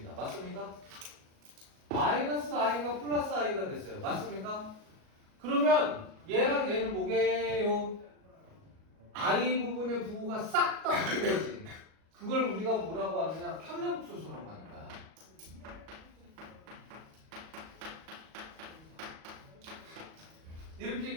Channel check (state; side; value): late; left; 38 ms